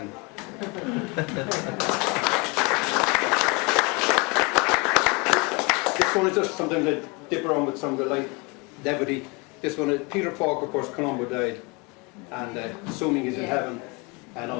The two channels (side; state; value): right; quieter; 28.9 dB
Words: This one is just something that dip around with some of the light levity. This one is Peter Falk, of course. Columbo died, and assuming he's in heaven and